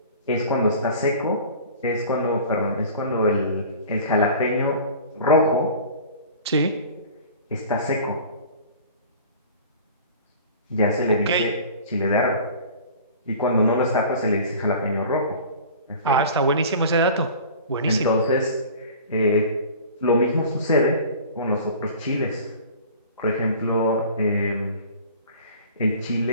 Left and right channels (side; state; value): both; inverted; correlation -0.43